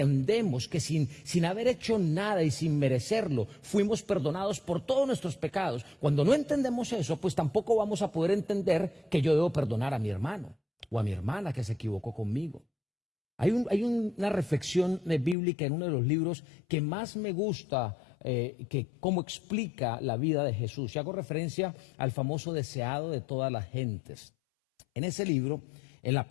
que sin haber hecho nada y sin merecerlo, fuimos perdonados por todos nuestros pecados. Cuando no entendemos eso, pues tampoco vamos a poder entender que yo debo perdonar a mi hermano o a mi hermana que se equivocó conmigo. Hay una reflexión bíblica en uno de los libros que más me gusta, que cómo explica la vida de Jesús. Y hago referencia al famoso deseado de todas las gentes. En ese libro, en la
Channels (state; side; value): drops out; right; at 15.4 s